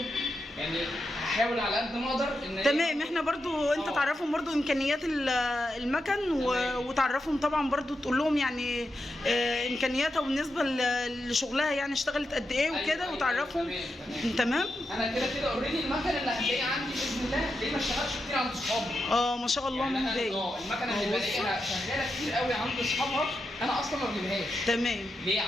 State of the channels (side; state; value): both; normal; correlation 0.87